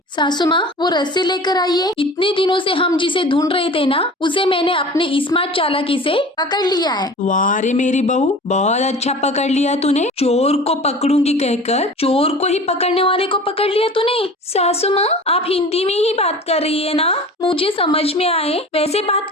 सासू माँ, वो रस्सी लेकर आइए। इतने दिनों से हम जिसे ढूंढ रहे थे ना, उसे मैंने अपने स्मार्ट चालाकी से पकड़ लिया है। वाह रे मेरी बहू, बहुत अच्छा पकड़ लिया तूने। चोर को पकड़ूंगी कहकर चोर को ही पकड़ने वाले को पकड़ लिया तूने। सासू माँ, आप हिंदी में ही बात कर रही है ना, मुझे समझ में आए वैसे बात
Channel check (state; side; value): normal; both; correlation 0.40